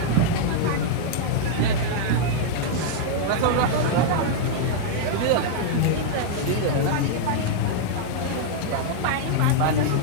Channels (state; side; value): different; both; correlation -0.01